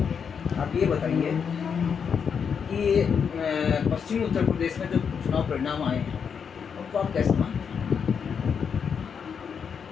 आप ये बताइए कि पश्चिमी उत्तर प्रदेश में जो चुनाव परिणाम आए हैं उनको आप कैसे मानते हैं?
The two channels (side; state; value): right; quieter; 6.8 dB